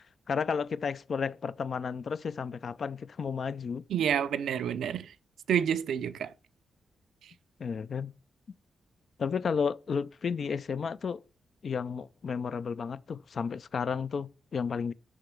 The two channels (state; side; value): normal; both; correlation 0.74